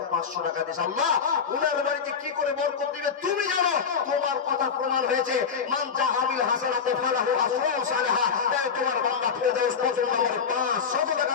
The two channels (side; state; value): right; quieter; 6.2 dB